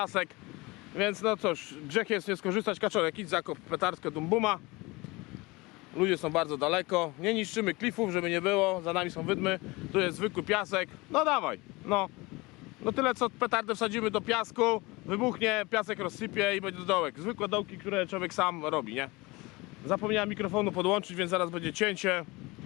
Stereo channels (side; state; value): right; quieter; 23.5 dB